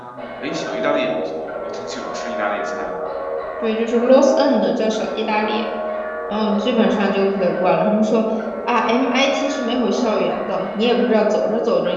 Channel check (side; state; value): both; identical; correlation 1.00